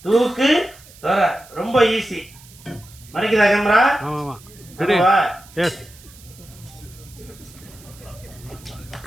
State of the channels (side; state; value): right; noise; hiss, 22 dB below the sound